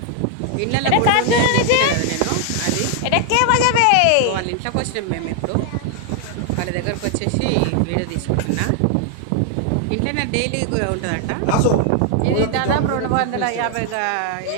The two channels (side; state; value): both; different; correlation 0.00